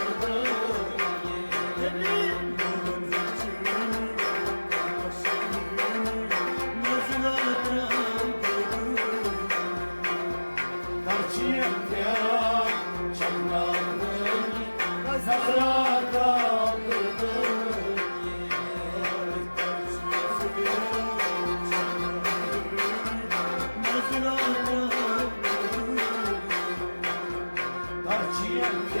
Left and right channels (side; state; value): both; inverted; correlation -1.00